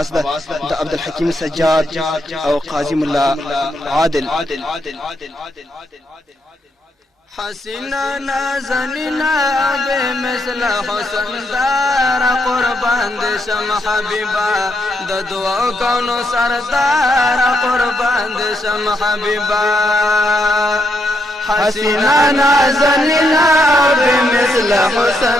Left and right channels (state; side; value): normal; both; correlation 0.79